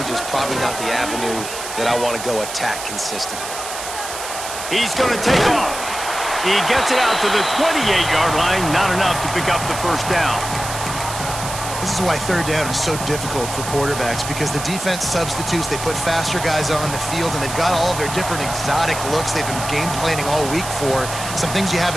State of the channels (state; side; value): noise; right; hiss, 8 dB below the sound